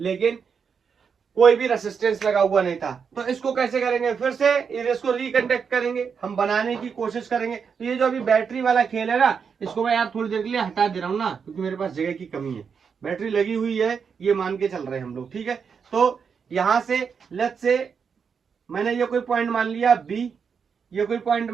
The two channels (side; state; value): left; quieter; 6.3 dB